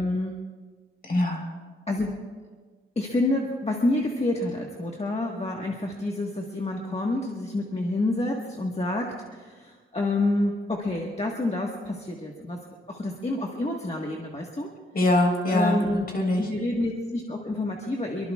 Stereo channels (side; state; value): both; normal; correlation 0.73